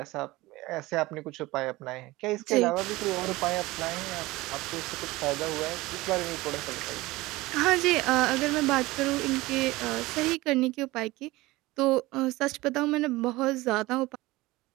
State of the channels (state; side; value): quieter; left; 19.9 dB